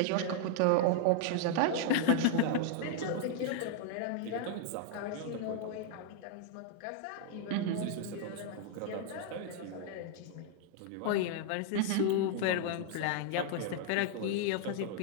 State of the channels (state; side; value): different; both; correlation 0.00